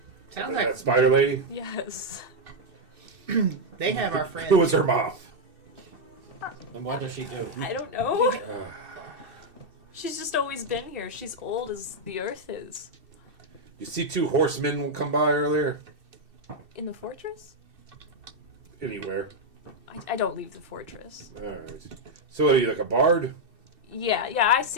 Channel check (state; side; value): late; left; 2.7 ms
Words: Sounds That like spider lady? Yes. they have our friends. Who was her mom? And what does she do? I don't know. She's just always been here. She's old as the earth is. You see 2 horsemen come by earlier? In the fortress? Anywhere. I don't leave the fortress. Alright. So are you like a bard? Yeah, I